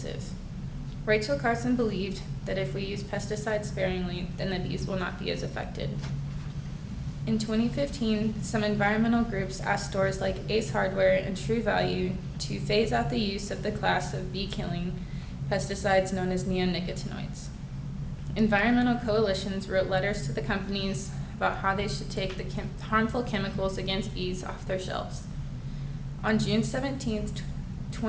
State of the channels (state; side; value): identical; both; correlation 1.00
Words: Rachel Carson believed that if we use pesticides sparingly, then the bees will not be as affected. In 2015, some environmental groups asked stores like Ace Hardware and True Value to phase out the use of the class of bee-killing pesticides known as neonicotinoids. Environmental coalitions wrote letters to the companies about how they should take the harmful chemicals against bees off their shelves. On June 17,